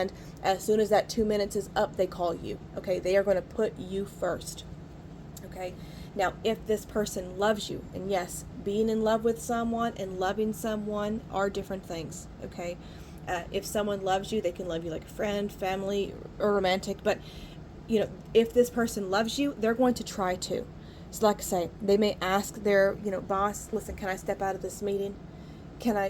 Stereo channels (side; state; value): both; identical; correlation 1.00